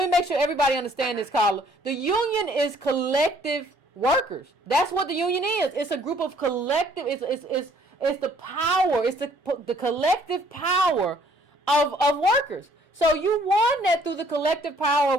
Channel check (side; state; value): both; normal; correlation 0.61